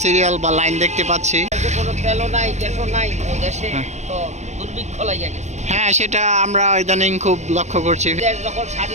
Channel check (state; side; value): late; left; 0.33 ms